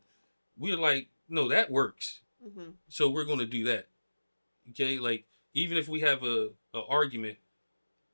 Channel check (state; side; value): inverted; both; correlation -1.00